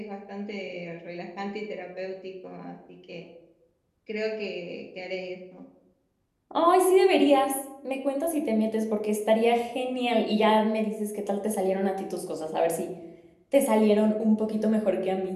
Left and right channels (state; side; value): identical; both; correlation 1.00